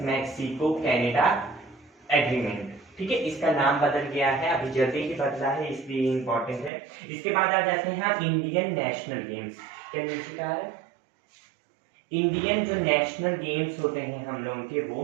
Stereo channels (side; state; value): left; drops out; at 6.7 s